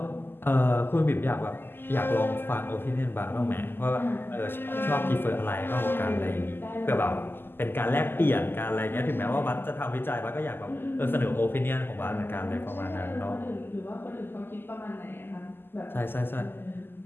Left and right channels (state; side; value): late; right; 0.10 ms